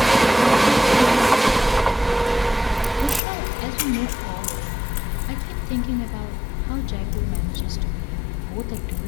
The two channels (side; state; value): right; drops out; at 3.2 s